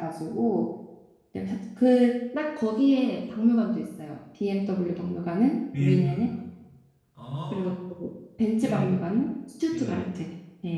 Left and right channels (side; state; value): both; identical; correlation 1.00